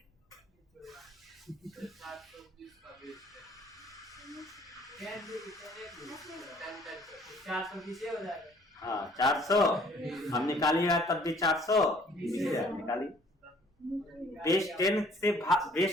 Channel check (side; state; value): both; normal; correlation 0.58